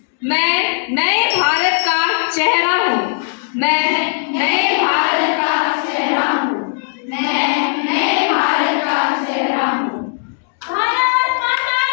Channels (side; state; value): right; silent; digital silence